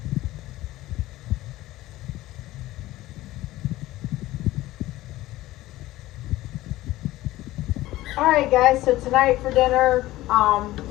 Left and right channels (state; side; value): quieter; right; 16.7 dB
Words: Alright guys, so tonight for dinner